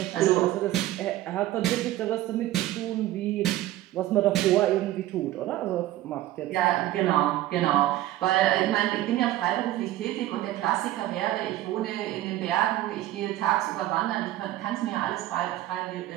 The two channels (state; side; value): quieter; left; 14.9 dB